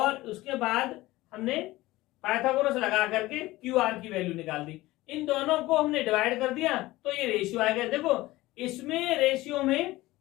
उसके बाद हमने पाइथागोरस लगा करके QR की वैल्यू निकाल दी। इन दोनों को हमने डिवाइड कर दिया तो ये रेशियो आ गया। देखो इसमें रेशियो में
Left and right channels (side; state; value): right; quieter; 18.5 dB